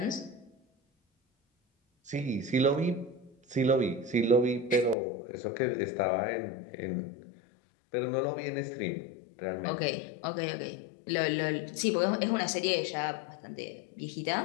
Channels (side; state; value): right; drops out; at 5.0 s